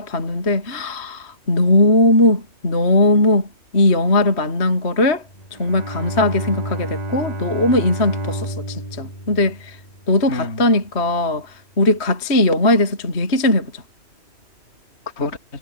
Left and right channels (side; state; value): right; late; 3.1 ms